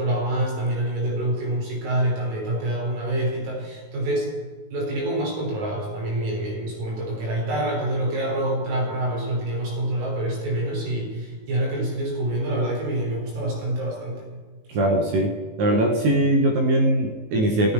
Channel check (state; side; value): late; left; 19 ms